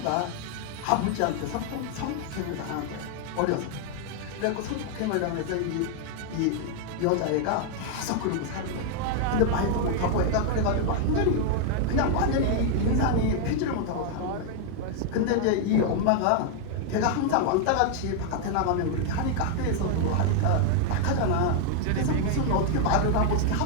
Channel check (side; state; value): both; different; correlation 0.00